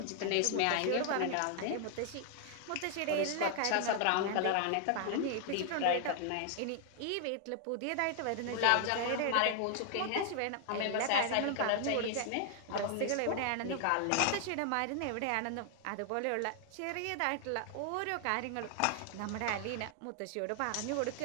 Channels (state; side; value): different; both; correlation 0.00